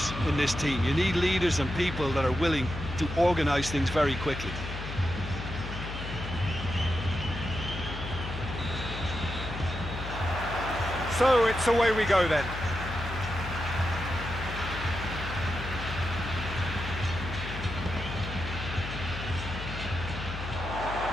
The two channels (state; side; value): noise; left; hum, 8 dB below the sound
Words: in this team. You need leaders and people that are willing to organise things very quickly. So it's away we go then.